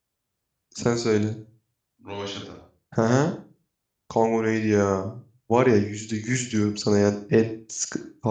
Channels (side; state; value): both; identical; correlation 1.00